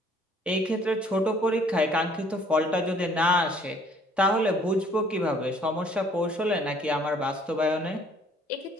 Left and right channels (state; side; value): normal; both; correlation 0.59